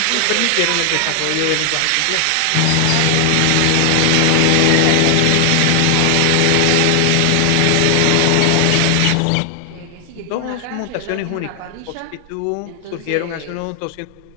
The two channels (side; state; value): both; different; correlation 0.00